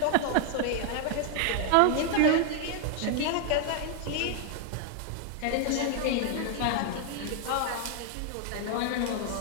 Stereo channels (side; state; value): both; different; correlation 0.00